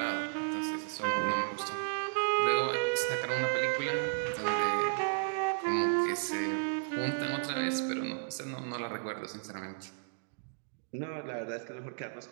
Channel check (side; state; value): left; silent; digital silence